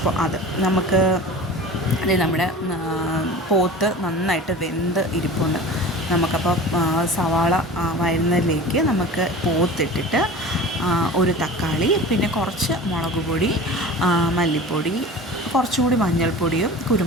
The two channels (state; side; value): normal; both; correlation 0.37